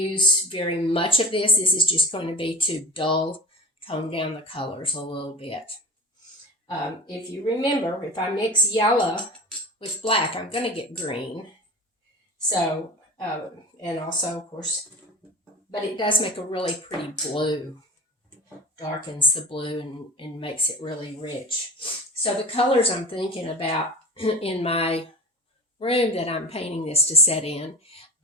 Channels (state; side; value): normal; both; correlation 0.33